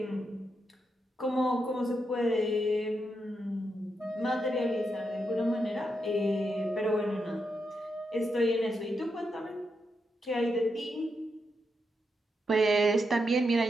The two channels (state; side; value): normal; both; correlation 0.84